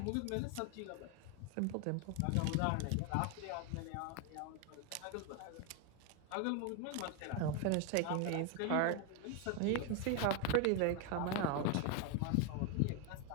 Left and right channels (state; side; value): different; both; correlation 0.01